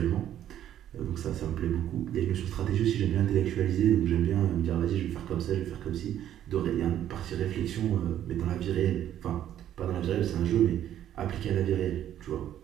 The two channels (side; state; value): left; quieter; 11.2 dB